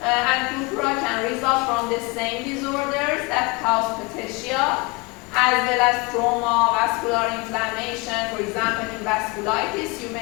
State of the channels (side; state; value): right; quieter; 26.9 dB